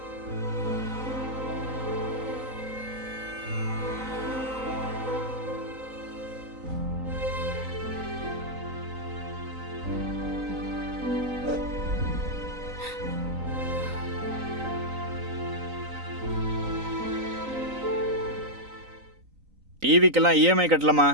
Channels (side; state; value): left; late; 3.9 ms